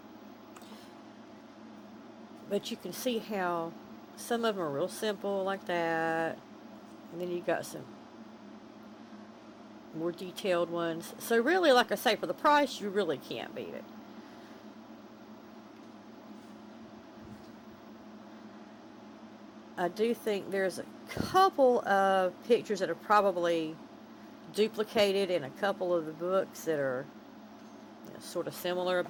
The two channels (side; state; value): both; identical; correlation 1.00